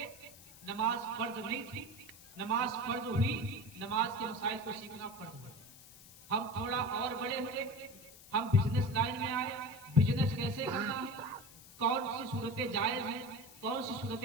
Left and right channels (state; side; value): noise; left; hiss, 20 dB below the sound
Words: نماز فرض نہیں تھی، نماز فرض ہوئی، نماز کے مسائل کو سیکھنا فرض ہوا۔ ہم تھوڑا اور بڑے ہوئے، ہم بزنس لائن میں آئے، بزنس کیسے کرنا ہے، کون سی صورتیں جائز ہیں، کون سی